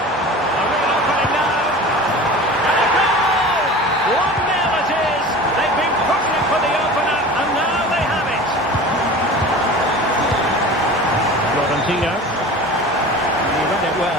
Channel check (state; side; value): normal; both; correlation 0.37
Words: He read it